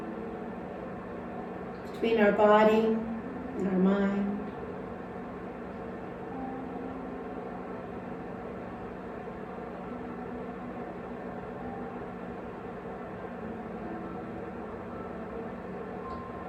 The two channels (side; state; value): both; identical; correlation 1.00